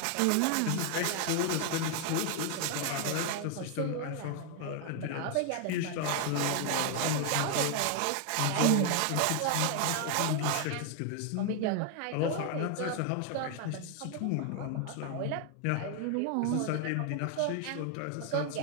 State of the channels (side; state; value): both; different; correlation 0.00